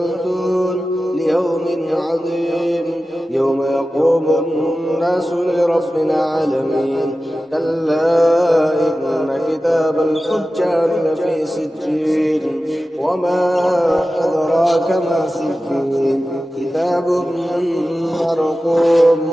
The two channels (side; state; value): both; normal; correlation 0.94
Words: ليوم عظيم يوم يقوم الناس لرب العالمين كلا إن كتاب الفجار لفي سجين وما أدراك ما سجين كتاب مرقوم